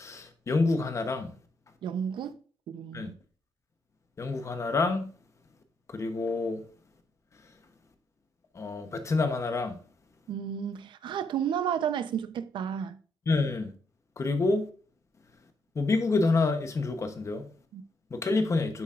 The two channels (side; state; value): both; normal; correlation 0.76